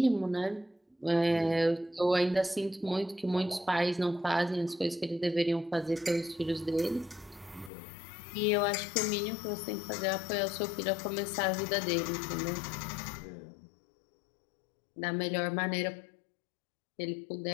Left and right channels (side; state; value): right; drops out; at 7.7 s